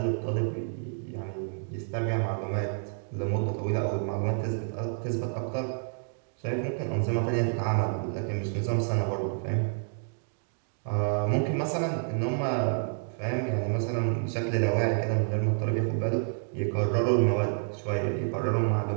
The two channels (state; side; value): silent; left; digital silence